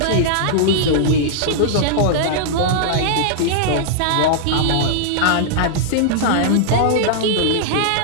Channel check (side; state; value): both; different; correlation -0.01